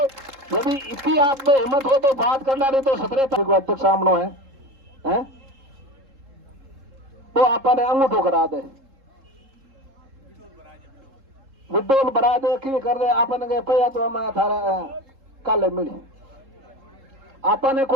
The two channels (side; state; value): left; late; 3.7 ms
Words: यदि इतनी आप में हिम्मत हो तो बात करना, नहीं तो 17 तारीख को अध्यक्ष सामने है तो आपने अंगूठो करा दे, विड्डोल बना दे की कर दे आपने गए पैया तो हमें थारा काले मिली। आपने